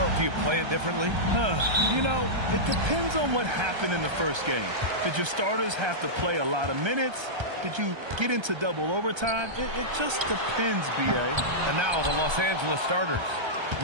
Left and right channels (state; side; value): late; left; 1.3 ms